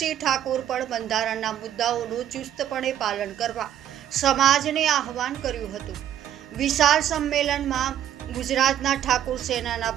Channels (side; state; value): left; quieter; 10.9 dB